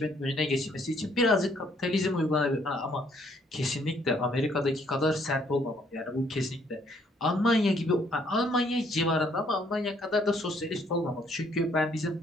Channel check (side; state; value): both; normal; correlation 0.66